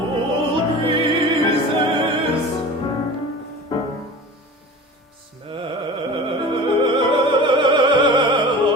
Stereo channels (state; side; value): normal; both; correlation 0.36